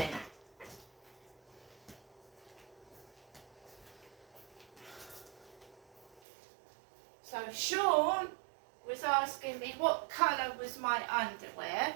So Sean was asking me what colour was my underwear.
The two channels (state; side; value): drops out; left; at 6.2 s